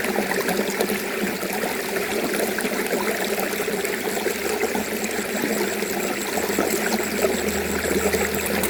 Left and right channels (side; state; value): both; identical; correlation 1.00